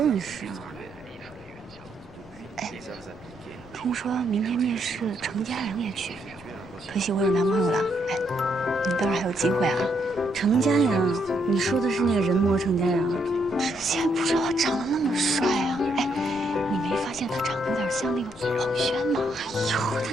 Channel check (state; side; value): noise; right; rumble, 27 dB below the sound